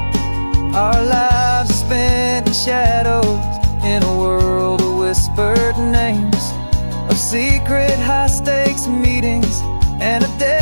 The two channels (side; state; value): both; inverted; correlation -1.00